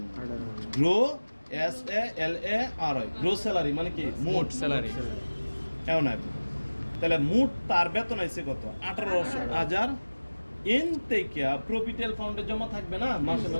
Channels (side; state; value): both; inverted; correlation -1.00